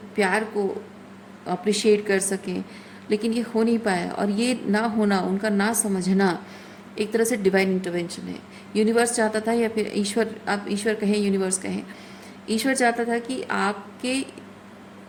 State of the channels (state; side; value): identical; both; correlation 1.00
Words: प्यार को अप्रिशिएट कर सकें। लेकिन ये हो नहीं पाया, और ये ना होना, उनका ना समझना एक तरह से डिवाइन इंटरवेंशन है। यूनिवर्स चाहता था, या फिर ईश्वर, आप ईश्वर कहें, यूनिवर्स कहें, ईश्वर चाहता था कि